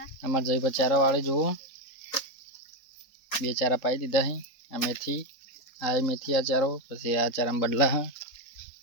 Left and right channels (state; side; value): late; right; 3.8 ms